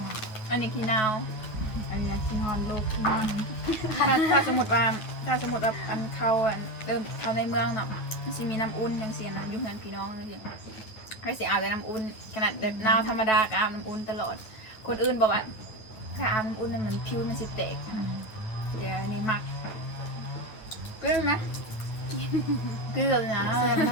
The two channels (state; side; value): late; right; 9.5 ms